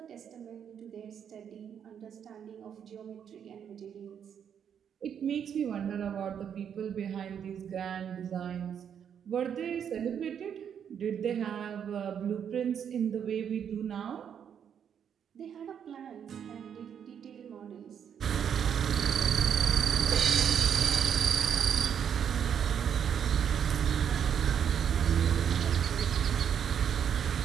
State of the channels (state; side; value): quieter; left; 8.3 dB